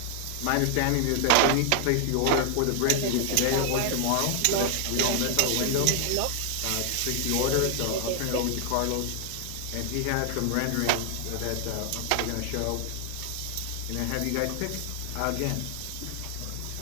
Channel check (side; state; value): both; different; correlation 0.00